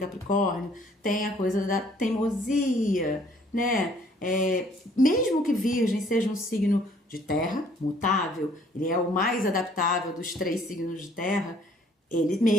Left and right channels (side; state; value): both; normal; correlation 0.60